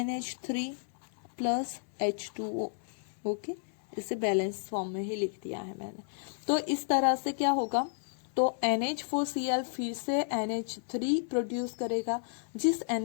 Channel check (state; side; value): silent; right; 56 dB below the other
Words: plus H2O। Okay, इसे बैलेंस फॉर्म में ही लिख दिया है मैंने। तो इस तरह से क्या होगा, तो NH4Cl फिर से NH3 प्रोड्यूस करेगा, जिस